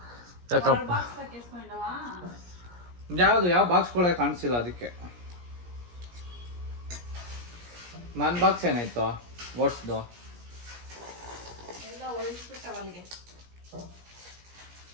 ಯಾಕಪ್ಪ ಬಾಕ್ಸ್ ಹಾಕಿಸ್ಕೊಂಡವಾ ಯಾವ ಬಾಕ್ಸ್ ಕೂಡ ಕಾಣಿಸಿಲ್ಲ ಅದಕ್ಕೆ. ನನ್ನ ಬಾಕ್ಸ್ ಏನಾಯ್ತು ಓಟ್ಸ್ದು? ಎಲ್ಲ ಒಳಗಿಸ್ಬಿಟ್ಟವ ಅಲ್ಲಿಗೆ.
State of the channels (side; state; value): left; late; 17 ms